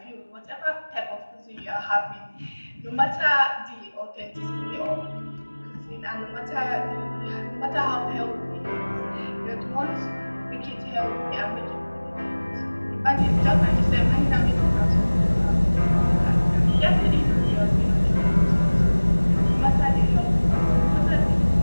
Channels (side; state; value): both; inverted; correlation -1.00